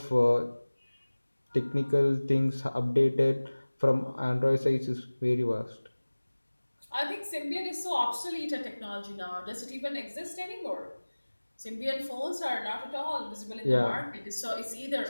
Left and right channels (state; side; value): inverted; both; correlation -1.00